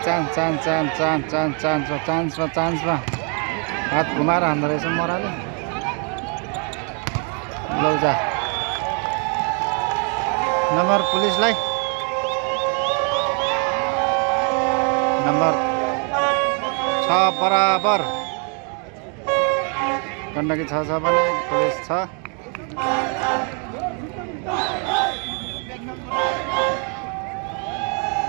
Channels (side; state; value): left; quieter; 38.8 dB